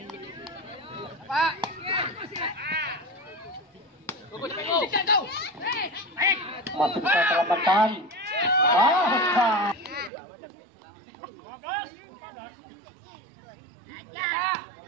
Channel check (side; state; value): left; drops out; at 10.1 s